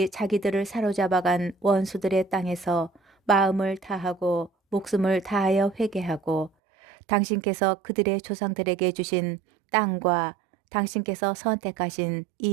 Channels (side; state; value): left; drops out; at 6.5 s